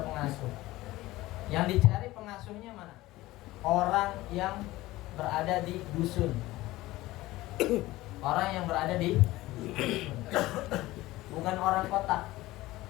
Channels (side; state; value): right; quieter; 17.9 dB